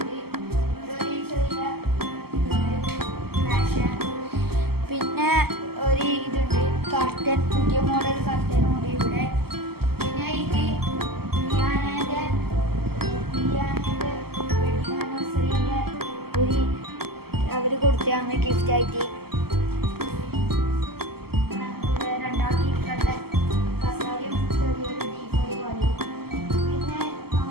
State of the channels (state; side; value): late; left; 0.96 ms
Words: ഒരു ചെറിയ പിന്നെ ഒരു ഇതുണ്ട് കർട്ടൻ, പുതിയ മോഡൽ കർട്ടനുണ്ട് ഇവിടെ. പിന്നെ ഇത് അവര് കൊടുത്താണ് ഗിഫ്റ്റ് ആയിട്ട്. രണ്ടാമത്തെ കസാരയും ചെറിയൊരു ഡീപ്പോയി പോലെ. പിന്നെ